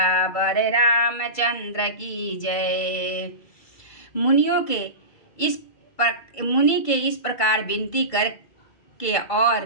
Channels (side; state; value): right; late; 2.3 ms